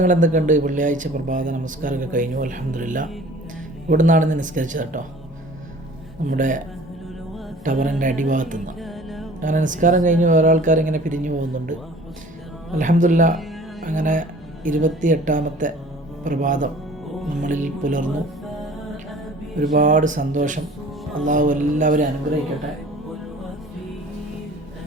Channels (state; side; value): normal; both; correlation 0.47